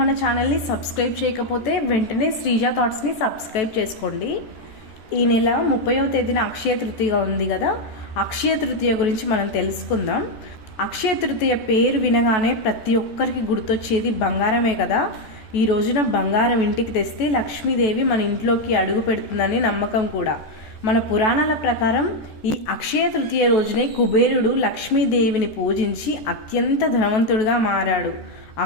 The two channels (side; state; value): right; late; 14 ms